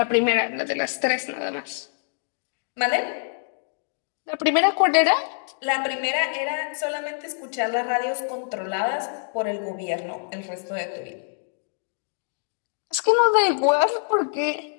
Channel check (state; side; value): silent; right; digital silence